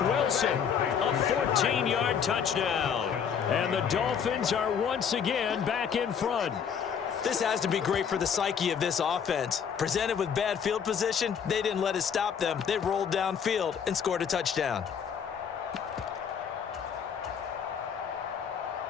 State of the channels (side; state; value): right; quieter; 7.4 dB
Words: Wilson, a 14-yard touchdown. And the Dolphins are once again back in front. This has to be great for the psyche of this offense. Presented with bad field position, they didn't let it stop them. They rolled downfield and scored a touchdown.